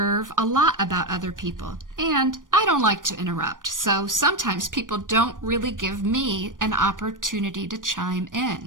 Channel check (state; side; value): late; left; 0.89 ms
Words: a lot about other people, and I don't like to interrupt, so sometimes people don't really give me an opportunity to chime